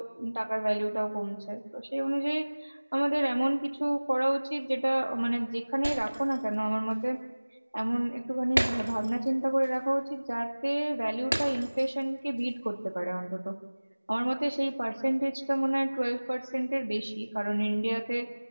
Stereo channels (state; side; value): inverted; both; correlation -1.00